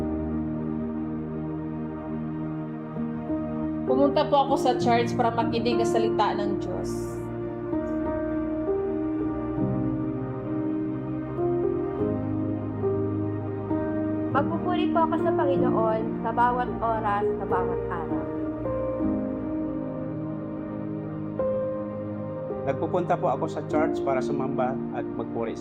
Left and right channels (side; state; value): both; identical; correlation 1.00